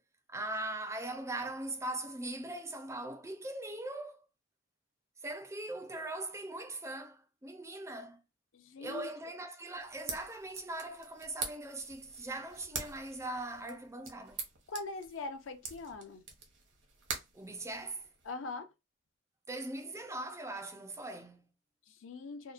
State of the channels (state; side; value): normal; both; correlation 0.22